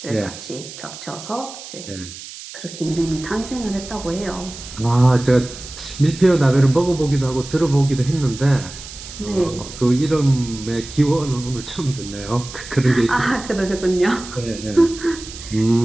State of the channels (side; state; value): right; noise; hiss, 13 dB below the sound